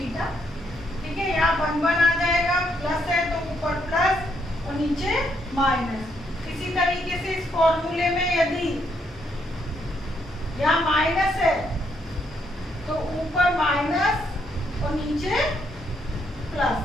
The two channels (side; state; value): both; normal; correlation 0.75